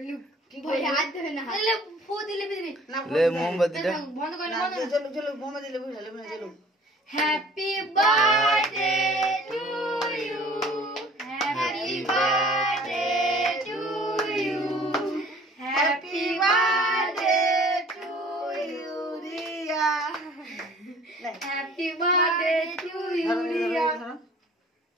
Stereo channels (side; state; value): both; normal; correlation 0.51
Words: भाई हाथ धोए ना ले फू दिले बिजली ले मोमबत्ती ले बंद कर না চলো চলো বোমা দিলে বুঝালে না চলো happy birthday to you happy birthday to you happy birthday to you Riya happy birthday to you Riya